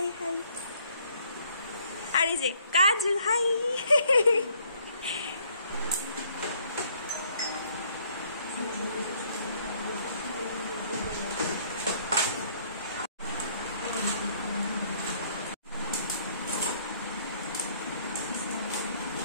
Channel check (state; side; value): inverted; both; correlation -0.63